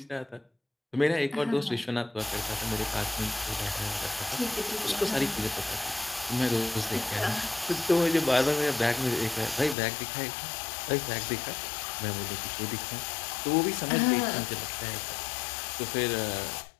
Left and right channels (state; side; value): drops out; right; at 9.8 s